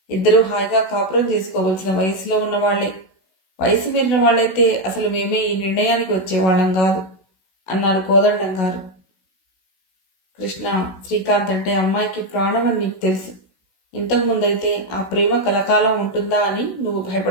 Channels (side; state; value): right; late; 16 ms